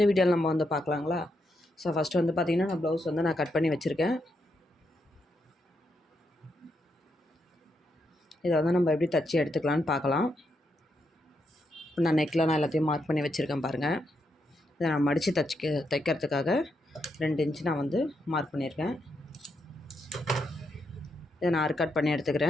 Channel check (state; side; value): normal; both; correlation 0.81